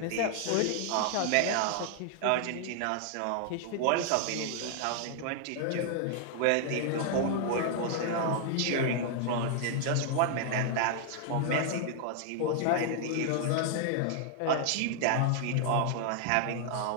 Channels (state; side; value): different; both; correlation 0.00